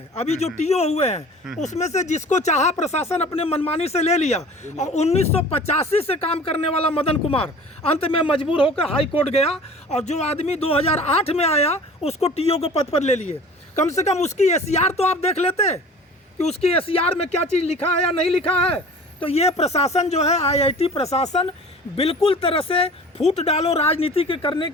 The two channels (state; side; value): normal; both; correlation 0.43